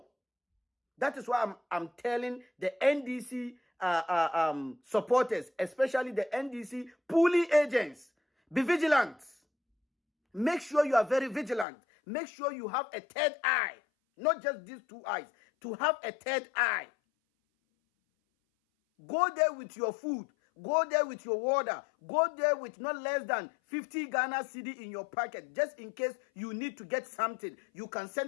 That is why I'm telling the NDC supporters, especially the NDC pooling agents, be vigilant. Make sure you are very vigilant. Make sure you have a third eye, not just these two eyes, to have a third eye. Go there with your food. Go there with your water. Go there with not less than 50 Ghana cedi in your pocket. Just in case you need to get something, you can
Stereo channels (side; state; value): right; drops out; at 11.7 s